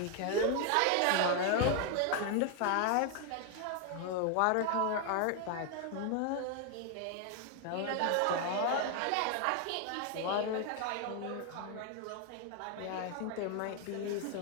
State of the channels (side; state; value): both; different; correlation 0.01